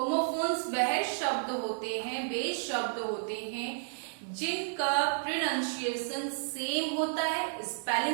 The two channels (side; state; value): left; silent; digital silence